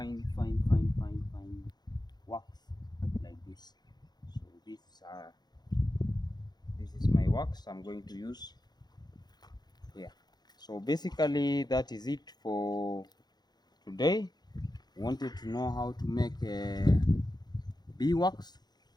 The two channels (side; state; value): right; late; 0.20 ms